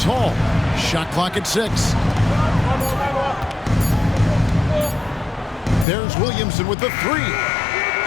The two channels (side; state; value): right; drops out; at 5.9 s